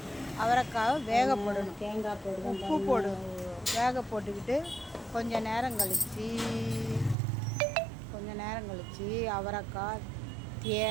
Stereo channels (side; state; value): left; drops out; at 7.2 s